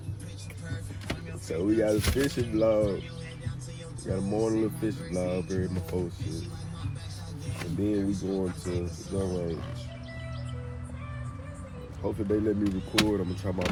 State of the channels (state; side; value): identical; both; correlation 1.00